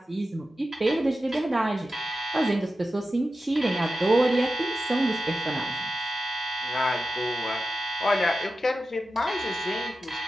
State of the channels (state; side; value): normal; both; correlation 0.92